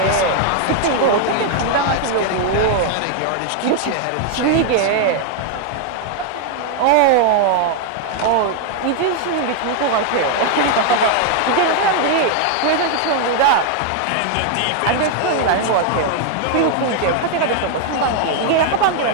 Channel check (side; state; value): both; different; correlation 0.00